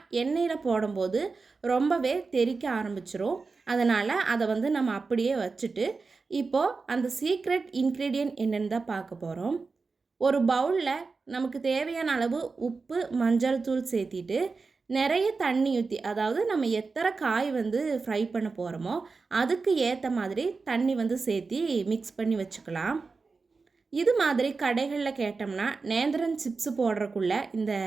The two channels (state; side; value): quieter; left; 4.3 dB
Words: எண்ணெயில் போடும்போது ரொம்பவே தெறிக்க ஆரம்பிச்சிரும். அதனால் அதை நம்ம அப்படியே வச்சுட்டு இப்போது அந்த சீக்ரெட் இன்க்ரீடியன்ட் என்னென்னு தான் பார்க்க போகிறோம். ஒரு பவுலில் நமக்கு தேவையான அளவு உப்பு, மஞ்சள் தூள் சேர்த்திட்டு நிறைய தண்ணி ஊற்றி, அதாவது நம்ம எத்தனை காய் ஃப்ரை பண்ண போகிறோமோ அதுக்கு ஏற்ற மாதிரி தண்ணி சேர்த்தி மிக்ஸ் பண்ணி வச்சுக்கலாம். இது மாதிரி கடைகளில் கேட்டோம்னா நேந்திரன் சிப்ஸு போடுறக்குள்ள இந்த